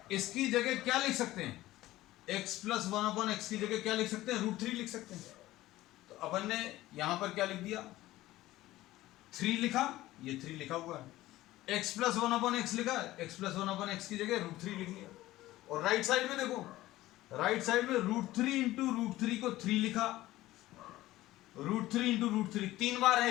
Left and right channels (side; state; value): right; quieter; 16.4 dB